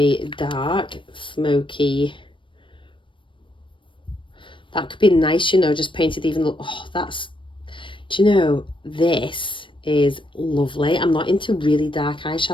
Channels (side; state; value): right; late; 0.24 ms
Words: dark, smoky. That could be nice, you know, just painted even. Oh, that's, do you know, this is lovely. I'm not into really dark